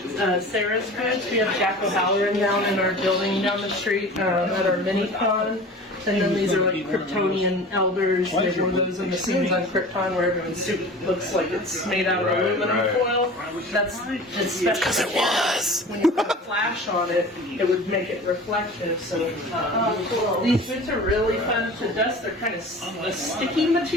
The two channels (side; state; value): both; normal; correlation 0.39